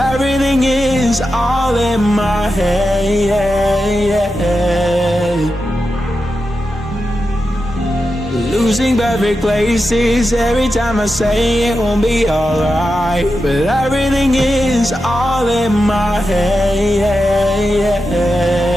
is all in my head. Losing perfect places every time I say it won't be alright, but everything is all in my head.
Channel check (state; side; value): normal; both; correlation 0.90